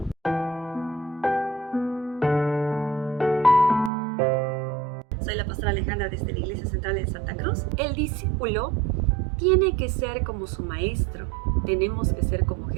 Soy la pastora Alejandra desde la Iglesia Central de Santa Cruz. El discípulo tiene que ser como su maestro. Tenemos que ser como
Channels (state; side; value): drops out; left; at 3.9 s